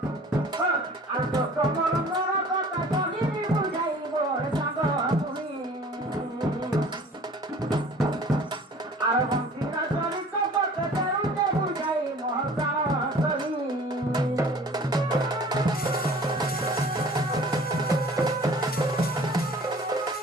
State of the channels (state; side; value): normal; both; correlation 0.48